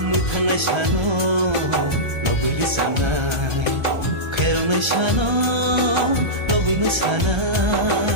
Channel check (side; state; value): left; late; 1.3 ms